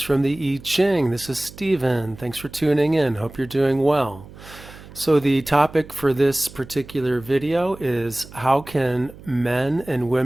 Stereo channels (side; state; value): right; noise; hum, 18 dB below the sound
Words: from the I Ching. This is Stephen. Thanks for tuning in. Hope you're doing well. So the topic for this particular video is how can men and